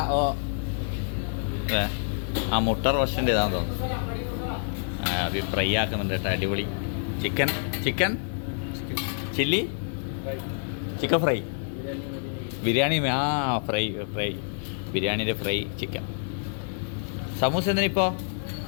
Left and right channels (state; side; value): silent; right; 60 dB below the other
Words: മുട്ട റോസ്റ്റിൻ്റെ ഇതാന്ന് തോന്നുന്നു. അത് ഫ്രൈ ആക്കുന്നുണ്ട് കേട്ടോ. അടിപൊളി. Chicken chilli chicken fry biryani. Fry ബിരിയാണിയുടെ ഫ്രൈ ചിക്കൻ. സമൂസ എന്തിനിപ്പോൾ?